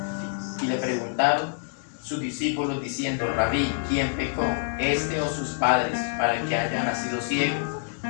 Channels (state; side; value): silent; right; digital silence